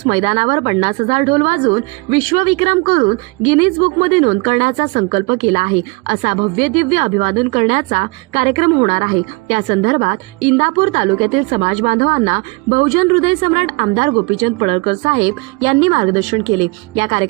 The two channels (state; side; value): quieter; left; 28.0 dB